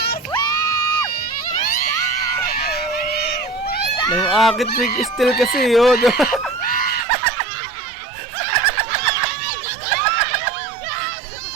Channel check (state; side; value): drops out; left; at 7.1 s